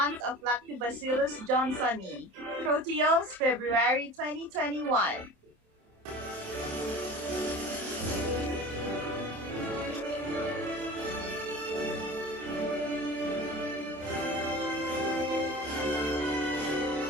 of Lactobacillus johnsoni. Proteomes, February 2021.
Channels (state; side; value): late; left; 27 ms